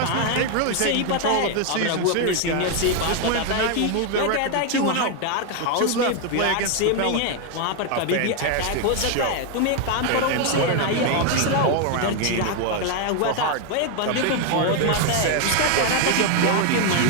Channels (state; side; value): different; both; correlation 0.01